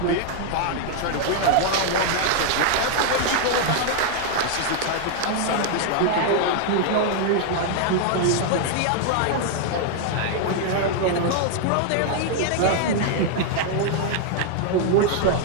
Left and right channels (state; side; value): different; both; correlation 0.00